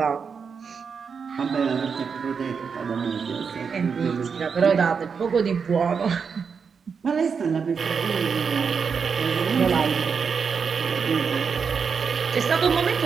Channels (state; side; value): quieter; left; 6.0 dB